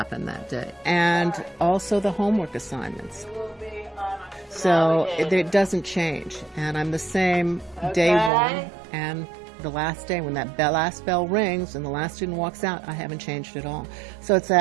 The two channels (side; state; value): left; drops out; at 8.3 s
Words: that day. And also the homework assignments. So it doesn't change. And I'm the same day one and the last day. When that last bell rings and the last student walks out, I haven't changed at all. So it's